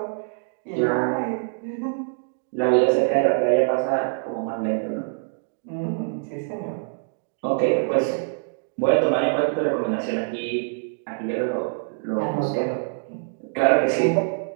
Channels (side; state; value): left; silent; digital silence